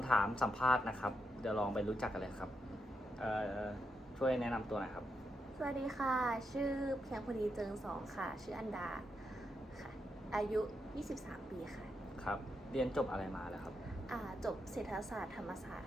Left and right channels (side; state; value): both; normal; correlation 0.83